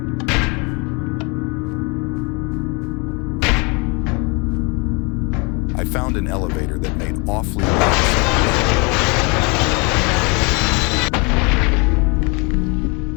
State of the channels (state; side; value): quieter; right; 30.4 dB